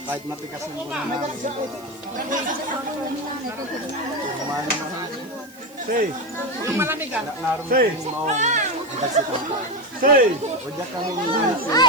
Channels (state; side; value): noise; right; hiss, 23 dB below the sound